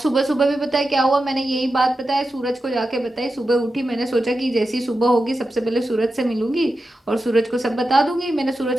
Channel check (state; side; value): normal; both; correlation 0.91